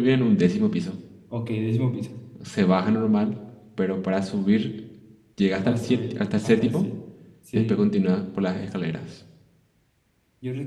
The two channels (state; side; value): identical; both; correlation 1.00